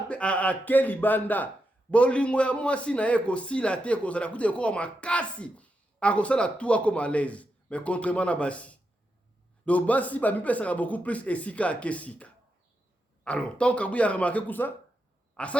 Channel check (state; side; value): normal; both; correlation 0.85